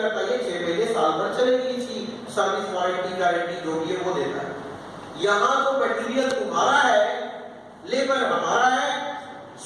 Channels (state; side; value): identical; both; correlation 1.00